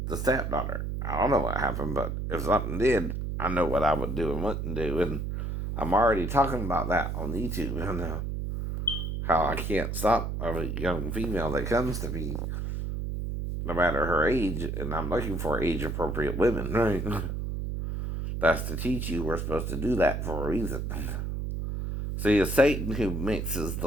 the stepdaughter. I don't know what happened, but if something did, I know what I would do and wouldn't do. And I'm already talking about that on YouTube. I know how I can't stop a young female that comes to me, no matter her age, and I'm looking for age appropriate women, right? That's to teach you we're supposed to do that for a reason. See, it's Satan who mixes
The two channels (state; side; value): noise; right; hum, 3 dB below the sound